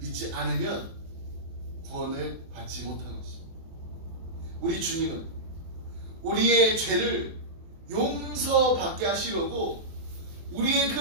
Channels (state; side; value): late; left; 24 ms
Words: 않으면 구원을 받지 못하는 것입니다. 우리 주님은 우리의 죄를 용서받게 하시려고 우리의 그